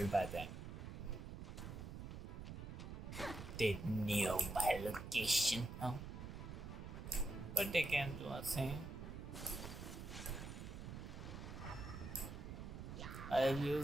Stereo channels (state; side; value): noise; right; rumble, 8 dB below the sound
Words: by them. They knew my location, huh? But they can't do a thing. I've